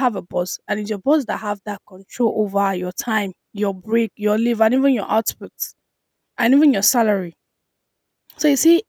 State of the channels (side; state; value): both; identical; correlation 1.00